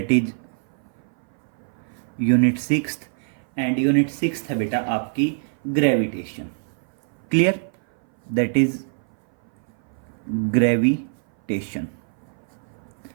is unit 6th and unit 6th है बेटा आपकी gravitation. Clear? That is gravitation.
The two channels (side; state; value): left; silent; 58 dB below the other